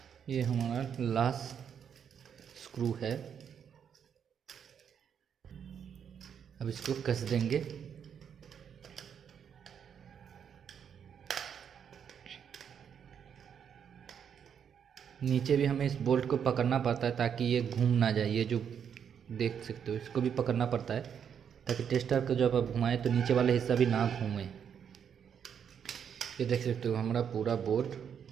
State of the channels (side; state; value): left; quieter; 7.9 dB